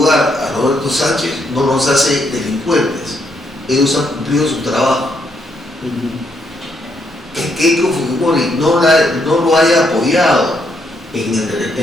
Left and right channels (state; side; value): normal; both; correlation 0.75